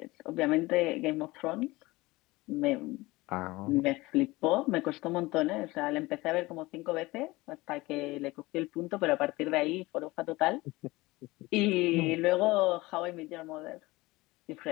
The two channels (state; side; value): quieter; right; 20.9 dB